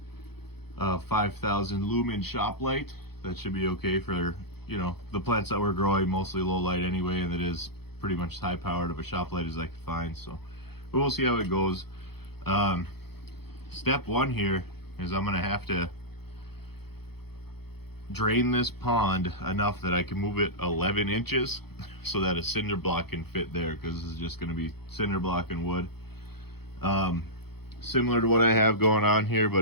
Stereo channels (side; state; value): right; late; 0.96 ms